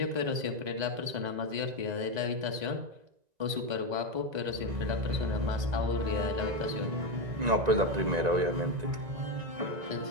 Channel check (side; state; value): left; late; 1.9 ms